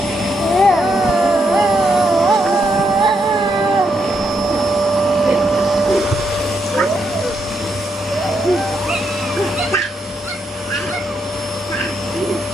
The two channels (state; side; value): normal; both; correlation 0.79